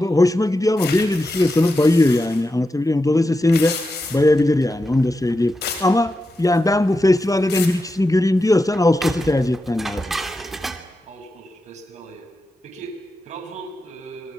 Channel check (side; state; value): both; normal; correlation 0.89